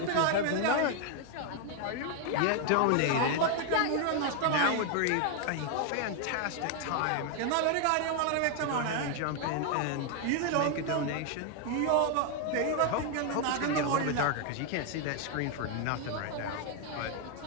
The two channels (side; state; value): both; different; correlation 0.01